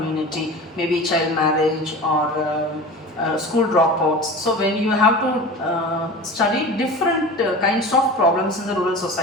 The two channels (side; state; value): both; normal; correlation 0.34